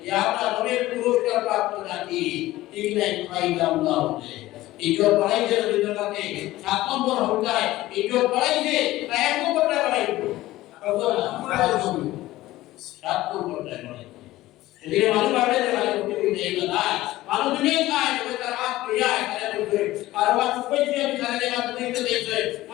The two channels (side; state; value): right; quieter; 16.7 dB